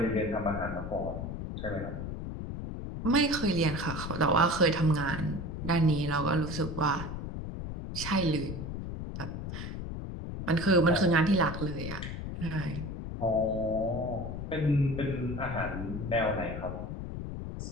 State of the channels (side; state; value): left; noise; rumble, 6 dB below the sound